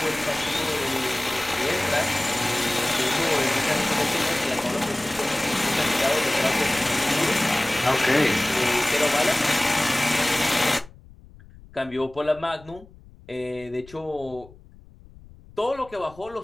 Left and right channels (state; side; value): noise; left; rumble, 23 dB below the sound